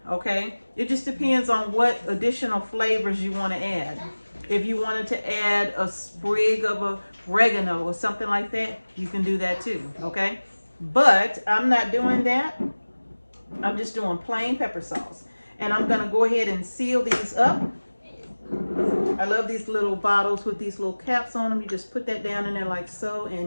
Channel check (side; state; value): both; inverted; correlation -1.00